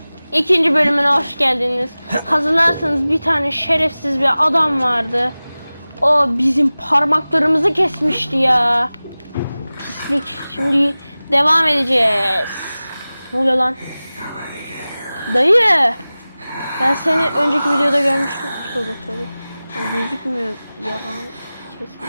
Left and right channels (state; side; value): inverted; both; correlation -0.98